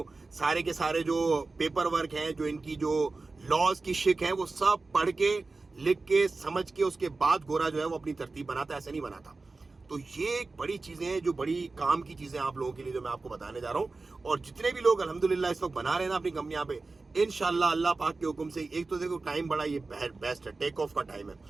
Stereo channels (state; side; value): quieter; left; 3.7 dB